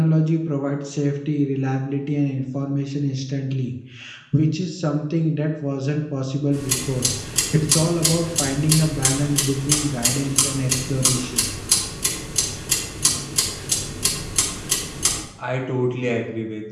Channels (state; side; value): identical; both; correlation 1.00